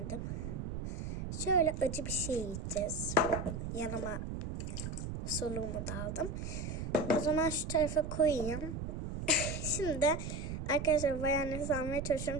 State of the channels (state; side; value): noise; right; rumble, 5 dB below the sound